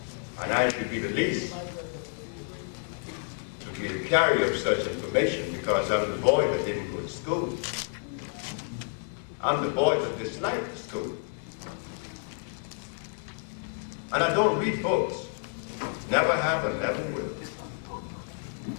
And I should be the least to be the carrier of such information because I'm the boy that didn't go to school. I'm the boy that disliked school. And I don't read books. Never have and never will.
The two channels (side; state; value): right; silent; 55 dB below the other